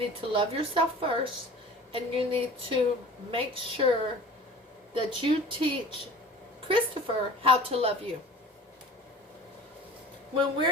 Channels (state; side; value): normal; both; correlation 0.41